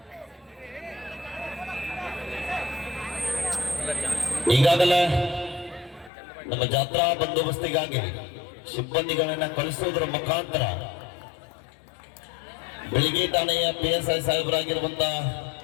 ಈಗಾಗಲೇ ನಮ್ಮ ಜಾತ್ರಾ ಬಂದೋಬಸ್ತಿಗಾಗಿ ಸಿಬ್ಬಂದಿಗಳನ್ನ ಕಳಿಸುವುದರ ಮುಖಾಂತರ ಬೆಳಿಗ್ಗೆ ಠಾಣೆಯ PSI ಸಾಹೇಬರಾಗಿರುವಂತ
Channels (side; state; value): right; drops out; at 6.1 s